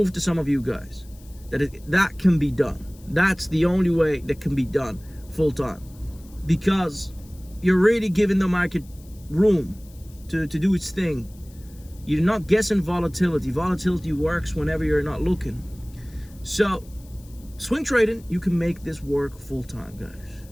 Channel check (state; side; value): noise; left; hiss, 26 dB below the sound